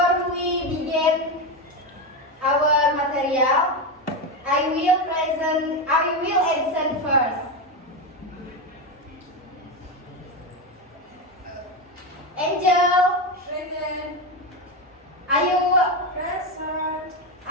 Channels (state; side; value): normal; both; correlation 0.13